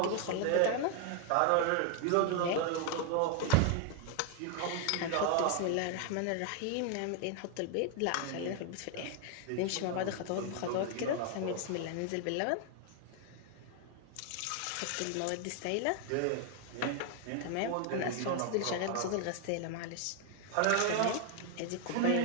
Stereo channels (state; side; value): different; both; correlation 0.00